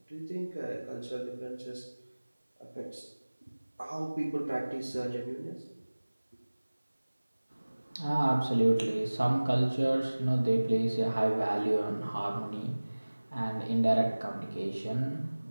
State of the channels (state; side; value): inverted; both; correlation -1.00